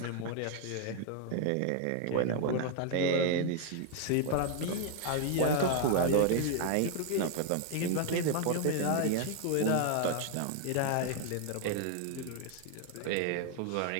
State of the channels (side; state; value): both; different; correlation 0.00